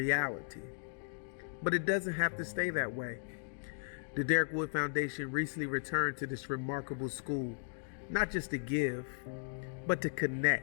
But it doesn't have to stay that way. The Derrick Wood Foundation recently returned to this remarkable school, not just to give, but to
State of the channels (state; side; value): silent; right; digital silence